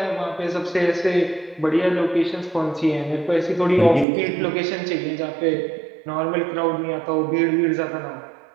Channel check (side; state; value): left; drops out; at 4.0 s